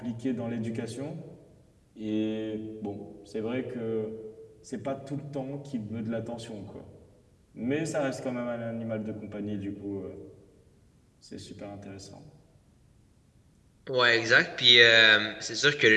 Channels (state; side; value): identical; both; correlation 1.00